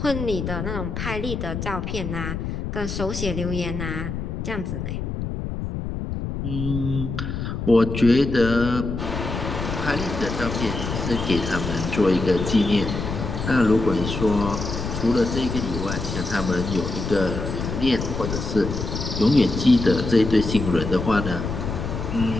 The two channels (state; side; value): noise; left; rumble, 4 dB below the sound